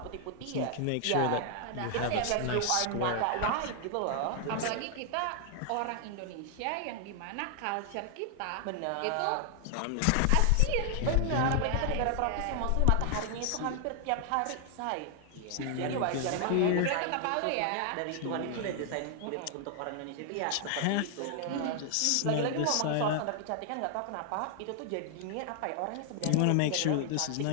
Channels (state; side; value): different; both; correlation 0.00